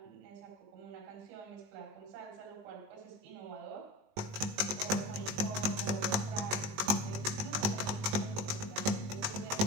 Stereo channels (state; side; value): late; left; 20 ms